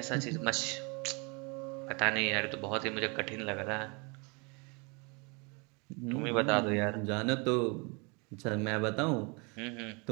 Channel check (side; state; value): left; quieter; 31.1 dB